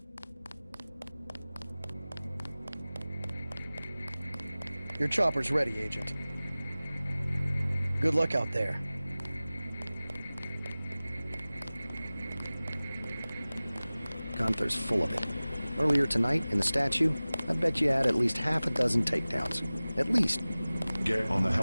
Your chopper's ready, Agent. Good luck out there. Gunther's full of it. Earlier tonight, in the statue, I bet you had at least half a dozen takedowns. At least. Get on the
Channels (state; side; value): inverted; both; correlation -0.98